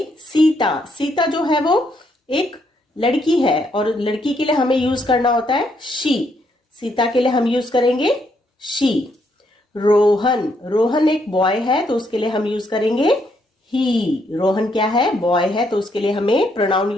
सीता। सीता जो है वो एक लड़की है और लड़की के लिए हमें यूज करना होता है शी। सीता के लिए हम यूज करेंगे शी। रोहन। रोहन एक बॉय है तो उसके लिए हम यूज करेंगे ही। रोहन क्या है? बॉय है, तो उसके लिए हमें प्रोनाउन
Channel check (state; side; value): normal; both; correlation 0.74